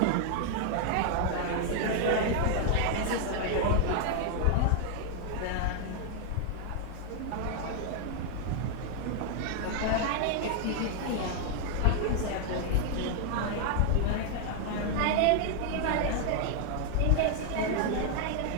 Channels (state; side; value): different; both; correlation 0.00